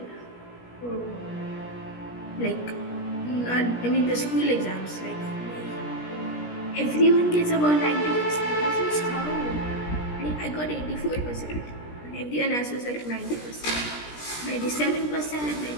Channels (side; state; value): right; late; 17 ms